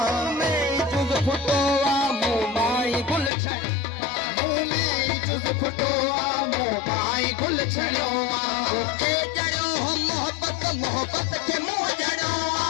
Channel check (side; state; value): right; drops out; at 3.3 s